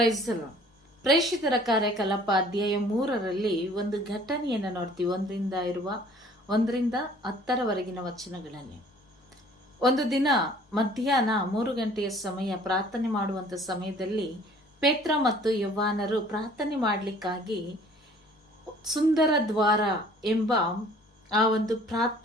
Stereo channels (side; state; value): both; normal; correlation 0.53